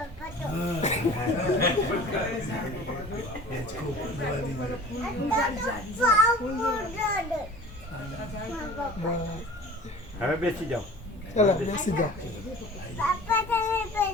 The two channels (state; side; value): normal; both; correlation 0.43